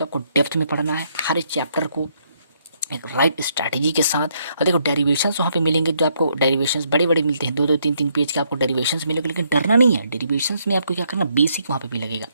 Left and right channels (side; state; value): both; inverted; correlation -0.72